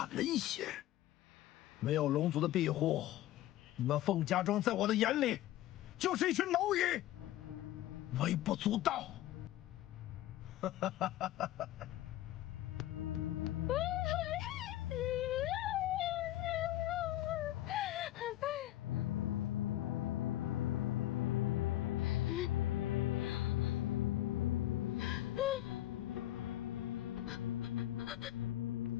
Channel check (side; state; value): right; quieter; 14.2 dB